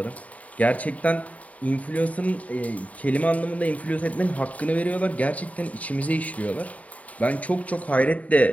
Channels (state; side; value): late; right; 0.069 ms